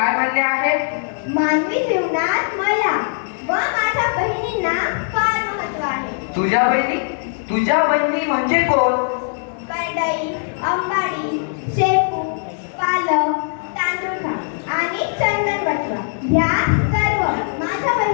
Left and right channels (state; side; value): silent; right; digital silence